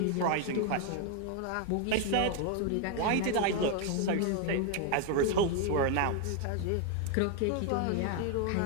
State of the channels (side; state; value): both; different; correlation 0.01